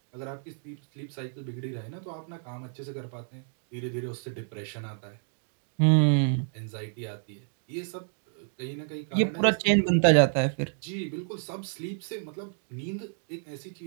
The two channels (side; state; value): left; silent; 58 dB below the other